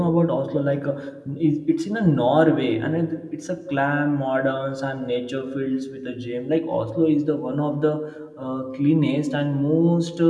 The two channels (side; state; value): both; identical; correlation 1.00